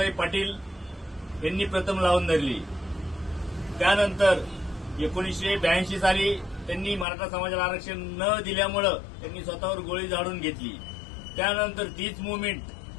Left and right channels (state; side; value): drops out; right; at 7.1 s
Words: पाटील यांनी प्रथम लावून धरली. त्यानंतर 1982 साली त्यांनी मराठा समाजाला आरक्षण न दिल्यामुळं त्यांनी स्वतःवर गोळी झाडून घेतली. त्यानंतर तीच मुवमेंट